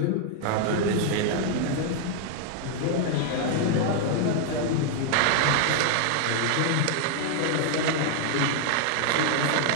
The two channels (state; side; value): different; both; correlation 0.00